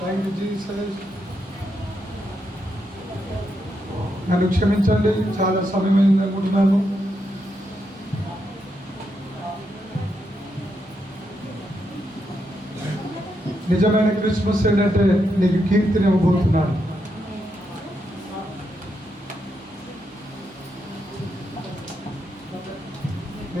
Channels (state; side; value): normal; both; correlation 0.82